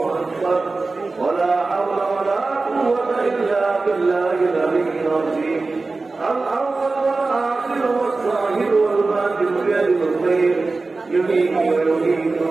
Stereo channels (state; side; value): quieter; left; 3.7 dB